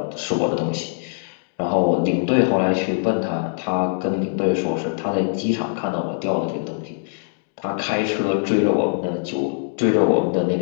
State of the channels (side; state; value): right; silent; digital silence